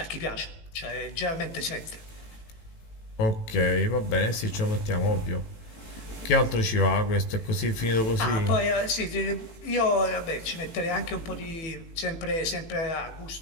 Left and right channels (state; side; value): late; right; 18 ms